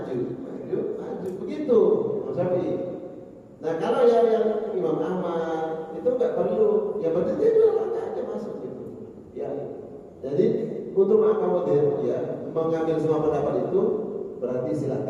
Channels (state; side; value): identical; both; correlation 1.00